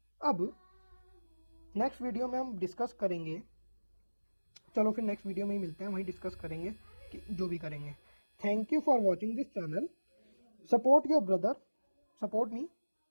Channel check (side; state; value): both; inverted; correlation -1.00